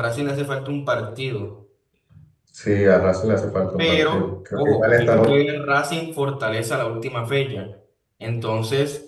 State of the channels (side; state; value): both; identical; correlation 1.00